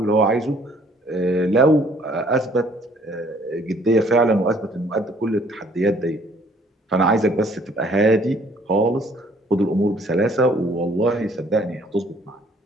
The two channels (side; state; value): both; normal; correlation 0.60